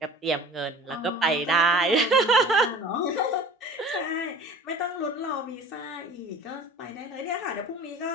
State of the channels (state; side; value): normal; both; correlation 0.42